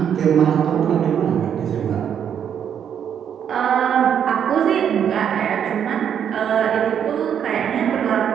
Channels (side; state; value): left; quieter; 8.6 dB